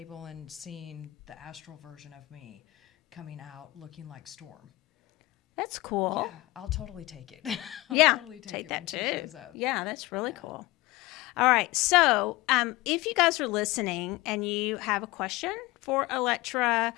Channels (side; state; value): right; quieter; 19.8 dB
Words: and seeing the astral version of me coming out looking like Storm. That's cool. Yeah, I'll totally take it. Totally take that too. Yeah, that's really cool. All right, so if you guys are listening and you have a question for Elektra,